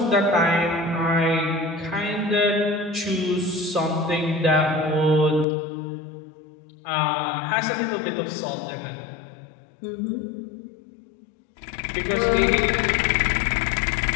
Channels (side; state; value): right; drops out; at 5.5 s